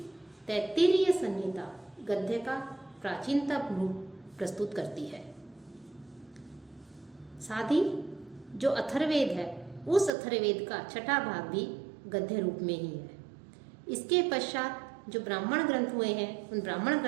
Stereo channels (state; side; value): drops out; left; at 10.1 s